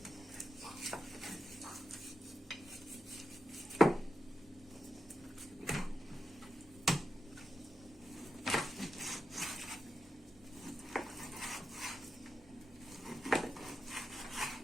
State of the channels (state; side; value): normal; both; correlation 0.88